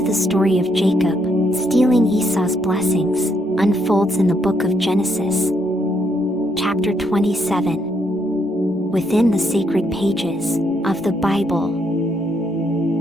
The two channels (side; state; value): both; normal; correlation 0.74